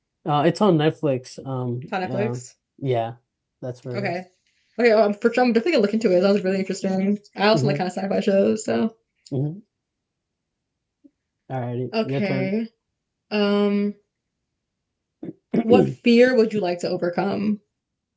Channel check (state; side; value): identical; both; correlation 1.00